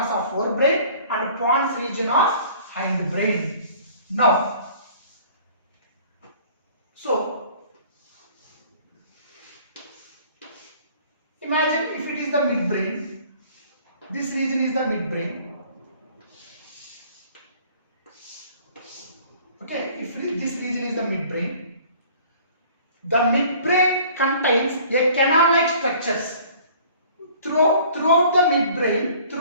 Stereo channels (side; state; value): both; inverted; correlation -0.51